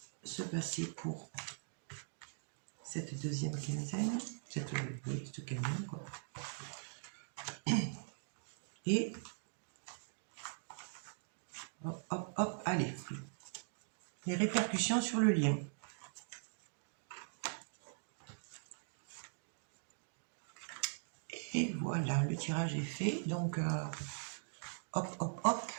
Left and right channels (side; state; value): left; silent; digital silence